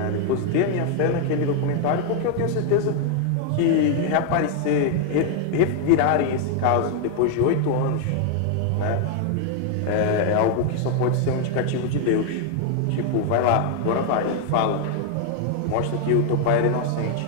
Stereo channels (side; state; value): both; different; correlation 0.00